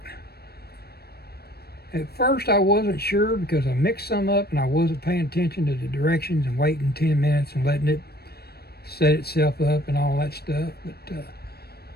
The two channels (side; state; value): right; late; 0.46 ms